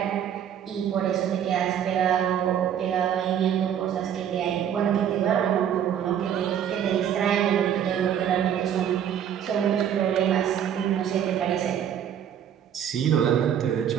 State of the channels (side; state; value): left; quieter; 9.4 dB